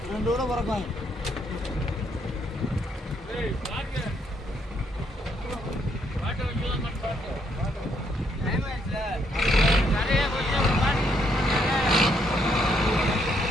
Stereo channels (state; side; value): normal; both; correlation 0.73